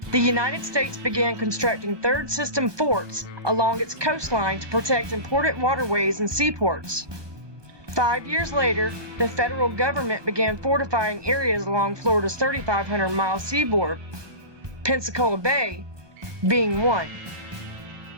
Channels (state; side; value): late; left; 1.2 ms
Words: the United States began constructing third system forts along its coastline to protect important waterways and seaports. 5 years later, the federal government began fortifying areas along Florida's 3,500-mile seaboard, Pensacola Bay being one.